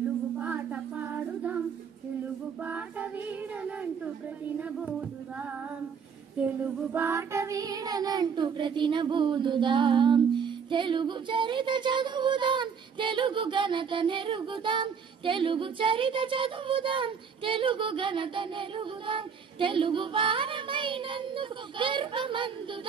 పాట పాడుదాం, తెలుగు పాట వీడనంటూ ప్రతినబోదుదాం, తెలుగు పాట వీడనంటూ ప్రతినబోదుదాం. తెలుగు చరిత చదువుదాం, తెలుగు ఘనత నెరుగుదాం, తెలుగు చరిత చదువుదాం, తెలుగు ఘనత నెరుగుదాం, తెలుగు వారమైనందుకు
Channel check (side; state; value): left; quieter; 6.5 dB